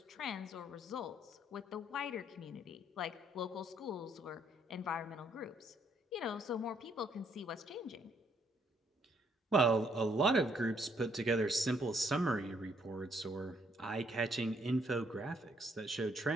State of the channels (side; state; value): both; normal; correlation 0.69